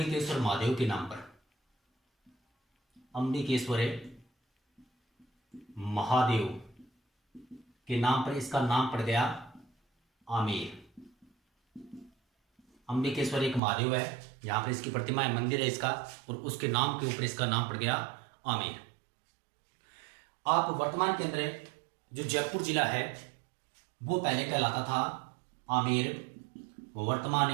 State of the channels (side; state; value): left; drops out; at 13.6 s